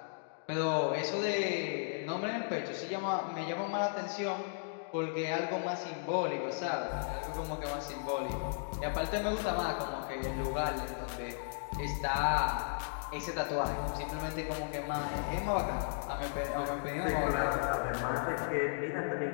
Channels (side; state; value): right; silent; digital silence